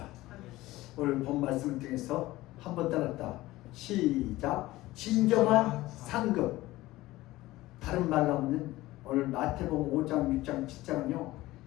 오늘 본 말씀을 통해서 한 번 따랐다. 시작. 진정한 상급. 다른 말로 하면 오늘 마태복음 5장, 6장, 7장은요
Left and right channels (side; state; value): right; quieter; 17.8 dB